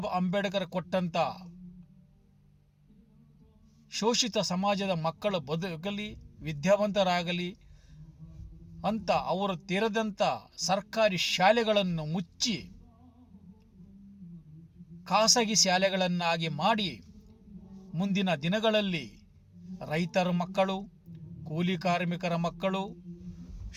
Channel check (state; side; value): identical; both; correlation 1.00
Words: ಅಂಬೇಡ್ಕರ್ ಕೊಟ್ಟಂತ ಶೋಷಿತ ಸಮಾಜದ ಮಕ್ಕಳ ಬದುಕಲಿ, ವಿದ್ಯಾವಂತರಾಗಲಿ ಅಂತ ಅವರು ತೆರೆದಂಥ ಸರ್ಕಾರಿ ಶಾಲೆಗಳನ್ನು ಮುಚ್ಚಿ ಖಾಸಗಿ ಶಾಲೆಗಳನ್ನಾಗಿ ಮಾಡಿ ಮುಂದಿನ ದಿನಗಳಲ್ಲಿ ರೈತರ ಮಕ್ಕಳು, ಕೂಲಿ ಕಾರ್ಮಿಕರ ಮಕ್ಕಳು,